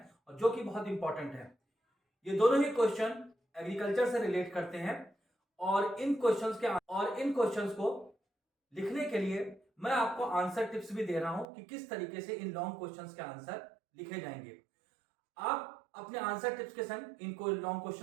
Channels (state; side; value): drops out; left; at 11.5 s